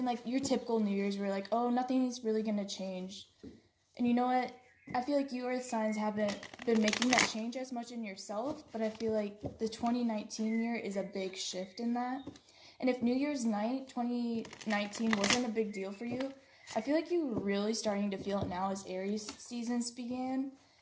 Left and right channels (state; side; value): identical; both; correlation 1.00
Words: like your typical New Year's where like, oh, nothing's really gonna change. And you know what? I feel like you Earth signs haven't been making that change as much in yourself, but I feel like the 2019 year is a big shift in that. And if New Year's night 2019 wasn't a big deal for you, I feel like you're really starting to feel it now as Aries seasons began,